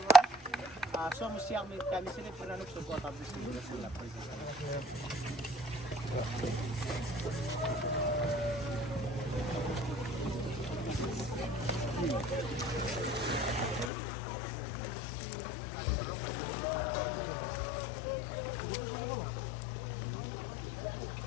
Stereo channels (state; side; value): drops out; right; at 13.9 s